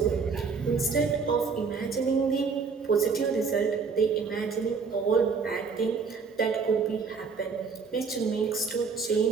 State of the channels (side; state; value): left; quieter; 5.2 dB